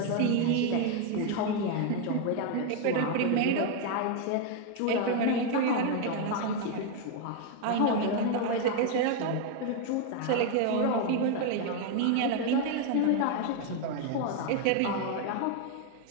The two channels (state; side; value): different; both; correlation 0.01